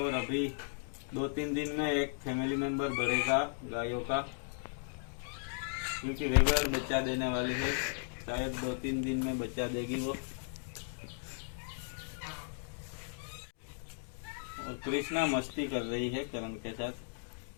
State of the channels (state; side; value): silent; right; digital silence